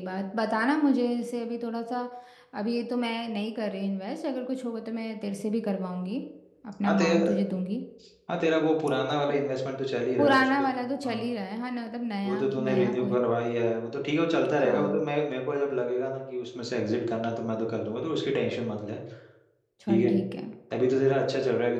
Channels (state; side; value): identical; both; correlation 1.00